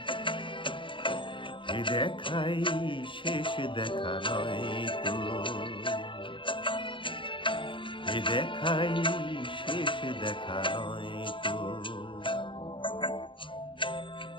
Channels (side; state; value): right; late; 0.24 ms